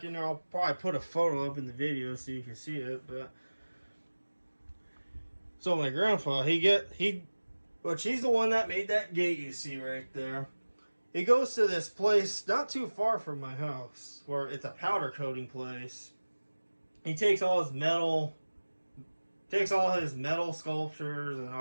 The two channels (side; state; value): both; inverted; correlation -1.00